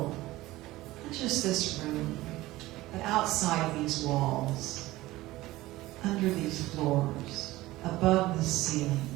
not just this room, but outside these walls, under these floors, above the ceiling,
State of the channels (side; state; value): left; quieter; 17.8 dB